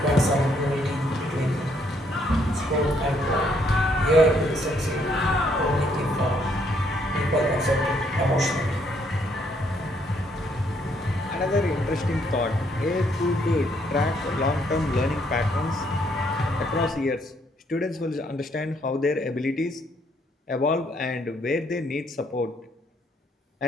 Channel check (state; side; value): normal; both; correlation 0.70